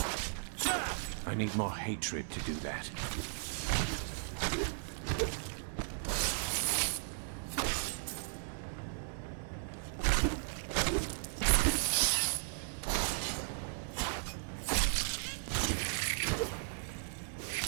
I need more hatred to do that.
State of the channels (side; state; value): left; silent; 54 dB below the other